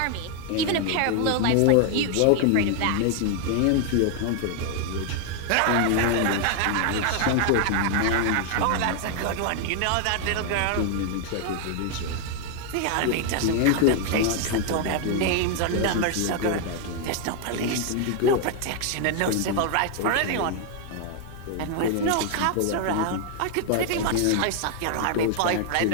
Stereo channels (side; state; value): both; different; correlation 0.00